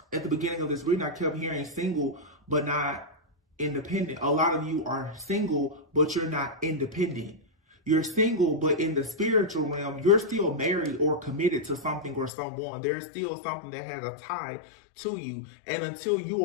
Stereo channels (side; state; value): right; drops out; at 12.3 s